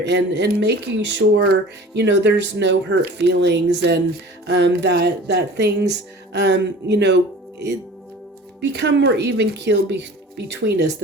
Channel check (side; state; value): both; normal; correlation 0.42